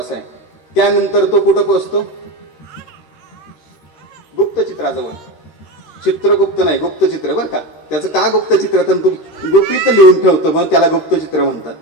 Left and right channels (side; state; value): right; late; 13 ms